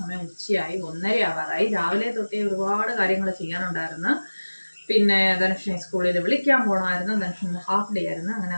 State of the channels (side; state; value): both; inverted; correlation -1.00